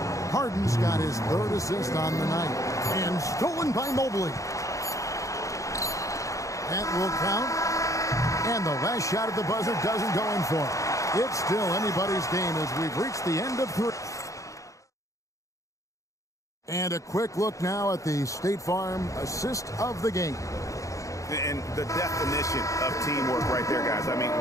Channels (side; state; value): right; late; 0.16 ms